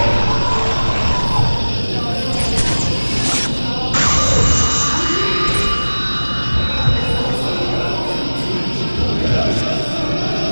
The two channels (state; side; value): inverted; both; correlation -1.00